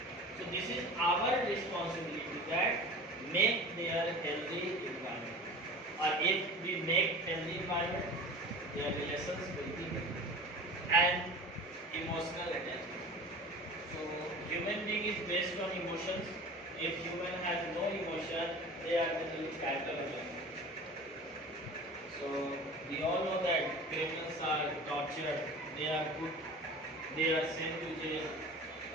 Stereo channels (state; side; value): normal; both; correlation 0.37